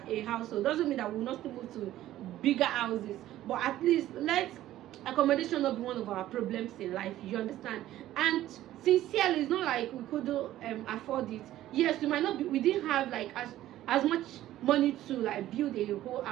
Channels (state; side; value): quieter; left; 13.9 dB